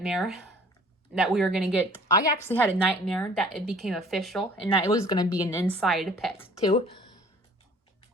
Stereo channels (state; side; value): normal; both; correlation 0.51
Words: that we were going to get. I actually had a nightmare that it became official and that it was going to be an inside pet too.